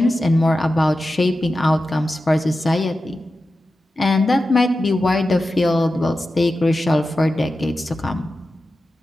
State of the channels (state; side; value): normal; both; correlation 0.92